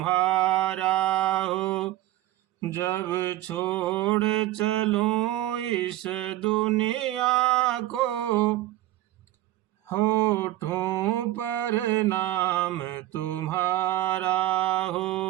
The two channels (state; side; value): quieter; left; 15.4 dB